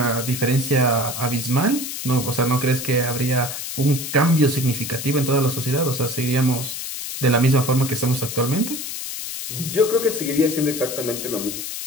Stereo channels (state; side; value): noise; left; hiss, 6 dB below the sound